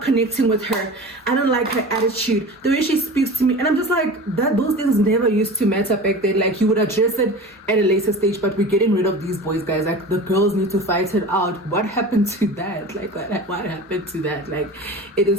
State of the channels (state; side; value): normal; both; correlation 0.35